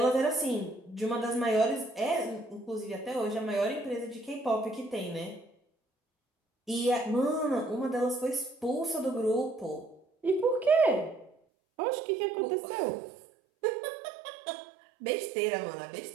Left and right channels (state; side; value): drops out; left; at 11.3 s